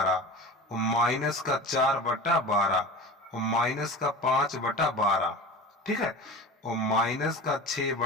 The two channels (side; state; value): both; normal; correlation 0.33